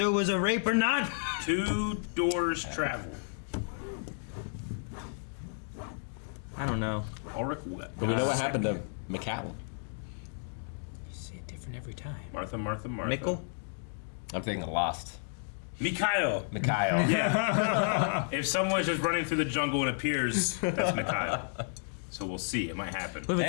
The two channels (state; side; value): silent; right; digital silence